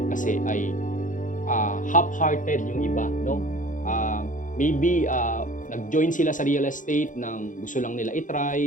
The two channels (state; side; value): late; right; 0.38 ms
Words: kasi ay half-hearted yung iba, no? Maybe nag-join sila sa real estate nang gusto lang nila